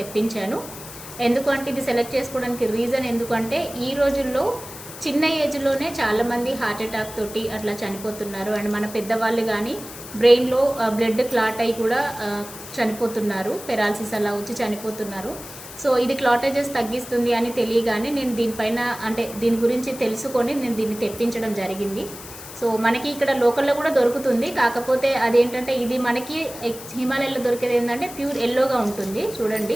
ఎందుకంటే ఇది సెలెక్ట్ చేసుకోవడానికి రీజన్ ఎందుకంటే ఈ రోజుల్లో చిన్న ఏజ్లోనే చాలామంది హార్ట్ అటాక్ తోటి అట్లా చనిపోతున్నారు. అండ్ మన పెద్దవాళ్ళు కానీ బ్రెయిన్లో బ్లడ్ క్లాట్ అయి కూడా చనిపోతున్నారు, పెరాలసిస్ అలా వచ్చి చనిపోతున్నారు. సో ఇది క్లాటేజెస్ తగ్గిస్తుంది అని తెలియగానే నేను దీనిపైన అంటే దీని గురించి తెలుసుకొని నేను దీన్ని తెప్పించడం జరిగింది. సో మనకి ఇక్కడ లోకల్లో కూడా దొరుకుతుంది, కాకపోతే అదేంటంటే ఇది మనకి హిమాలయాల్లో దొరికేది ఏంటంటే ప్యూర్ ఎల్లోగా ఉంటుంది.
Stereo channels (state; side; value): noise; left; hiss, 14 dB below the sound